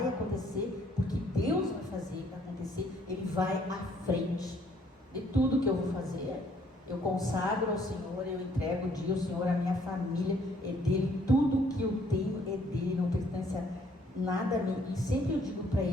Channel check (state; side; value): normal; both; correlation 0.64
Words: acontecer, porque Deus vai fazer acontecer, Ele vai à frente de tudo que eu vou fazer. Eu consagro ao Senhor, eu entrego o dia ao Senhor, a minha família é dele, tudo que eu tenho é dele, não pertence a nada a mim. E sempre eu digo para